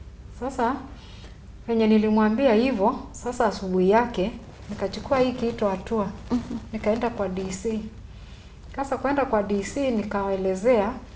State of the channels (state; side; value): identical; both; correlation 1.00